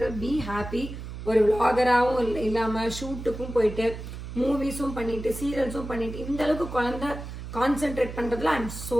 பி ஹாப்பி. ஒரு விளாகராகவும் இல்லாமல் ஷூட்டுக்கும் போயிட்டு மூவிஸும் பண்ணிட்டு சீரியல்ஸும் பண்ணிட்டு இந்த அளவுக்கு குழந்தை கான்சென்ட்ரேட் பண்ணுறதுல ஐ எம்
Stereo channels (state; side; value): noise; right; hum, 9 dB below the sound